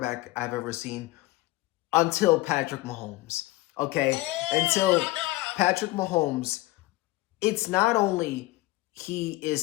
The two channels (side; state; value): right; quieter; 19.4 dB